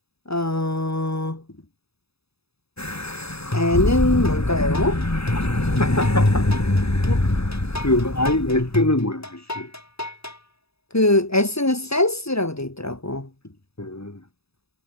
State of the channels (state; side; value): late; right; 0.78 ms